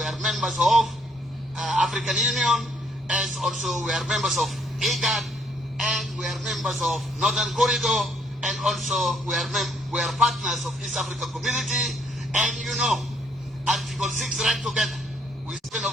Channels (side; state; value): both; normal; correlation 0.68